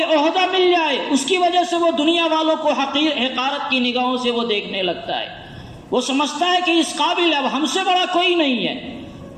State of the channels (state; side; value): identical; both; correlation 1.00